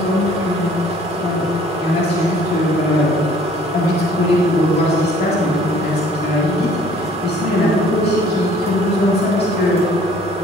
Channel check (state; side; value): normal; both; correlation 0.55